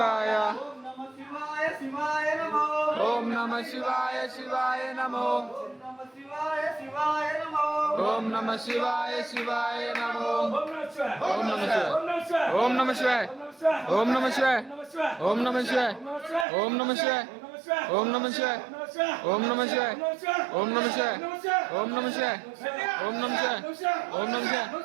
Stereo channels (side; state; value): left; drops out; at 16.4 s